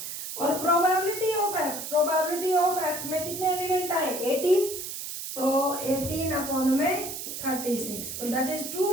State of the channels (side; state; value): right; noise; hiss, 7 dB below the sound